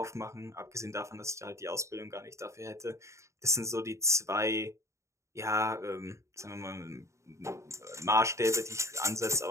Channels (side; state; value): left; late; 0.14 ms